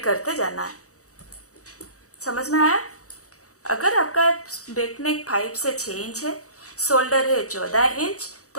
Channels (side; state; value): right; late; 0.65 ms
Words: करते जाना है। समझ में आया। अगर आपका बैक नेक 5 से 6 इंच है, शोल्डर है 14 इंच,